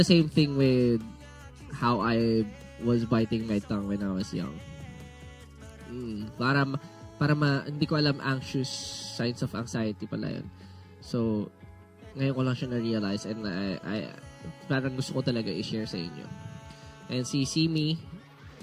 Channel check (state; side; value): identical; both; correlation 1.00